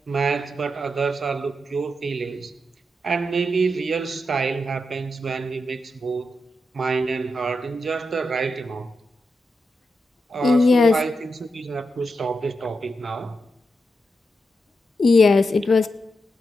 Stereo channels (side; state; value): both; normal; correlation 0.86